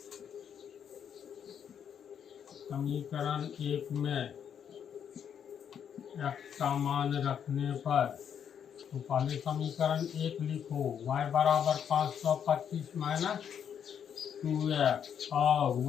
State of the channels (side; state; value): right; quieter; 8.3 dB